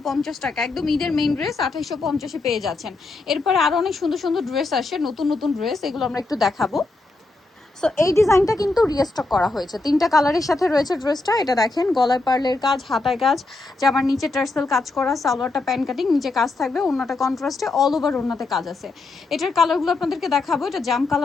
টাকা। একদম ঈদের মেইন ড্রেস 2850-এ পেয়ে যাচ্ছেন। এরপরে আরো অনেক সুন্দর সুন্দর ড্রেস আসে, নতুন নতুন ড্রেস, এগুলো আমরা একটু দেখাবো। সো এই ডিজাইনটা কিন্তু রিস্টক করা হয়েছে, তিনটা কালারের সাথে রয়েছে ড্রেসটা। এটা দেখেন, গলায় পার্লের কাজ, হাতায় কাজ, জামার নিচে টার্সেল কাজ করা, সালোয়ারটা প্যান্ট কাটিং, নিচে কাজ থাকবে, ওন্নাটা কন্ট্রাস্টে, অল ওভার ওন্নাতে কাজ আছে। এটার কালারগুলো আপনাদেরকে দেখাবো। এটা জাম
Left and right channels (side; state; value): right; quieter; 3.4 dB